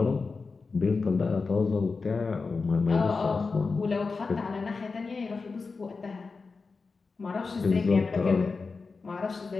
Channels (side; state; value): right; quieter; 4.4 dB